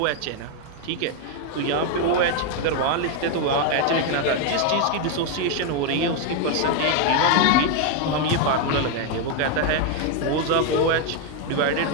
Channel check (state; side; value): different; both; correlation 0.01